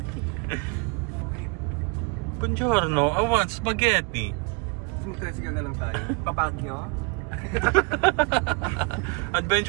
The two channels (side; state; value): left; quieter; 30.3 dB